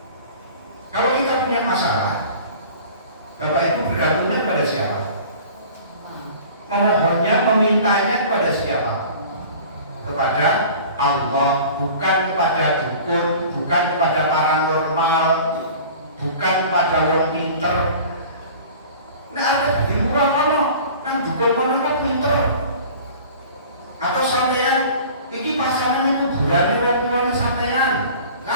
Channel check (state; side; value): inverted; both; correlation -0.43